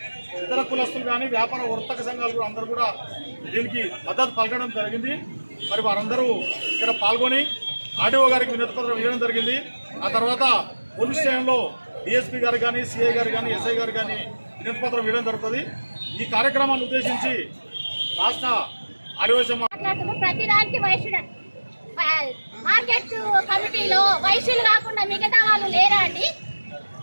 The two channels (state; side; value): inverted; both; correlation -1.00